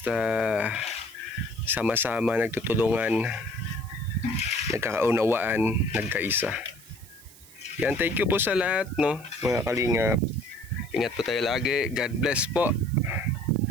sama-sama nagtutulungan, nagkakaunawaan, nagkaisa. Yan, thank you po sa lahat no, mga kalingap. Ingat po tayo lagi. God bless po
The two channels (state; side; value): noise; right; hiss, 22 dB below the sound